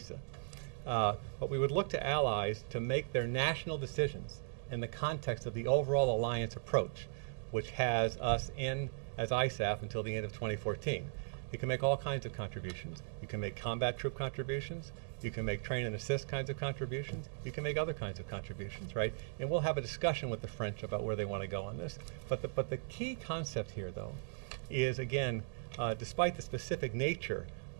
But we would look to allies to make their national decisions in the context of the overall alliance approach, which has us in as ISAF until the end of 2014. You can make all kinds of contributions. You can make combat troop contributions. You can make train and assist kinds of contributions. You can make other kinds of contributions, right? And we'll have a discussion with the French about where they want to go on this. But the key concept here, though, is, again, despite the specific nature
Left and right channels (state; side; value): silent; left; digital silence